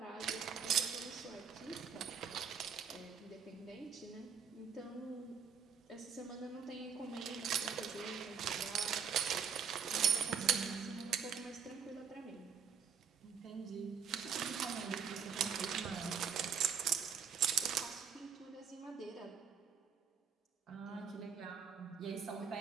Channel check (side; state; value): left; quieter; 7.1 dB